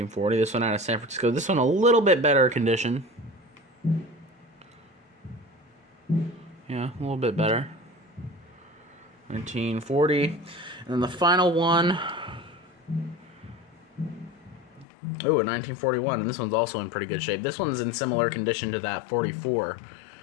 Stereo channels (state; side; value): drops out; right; at 14.9 s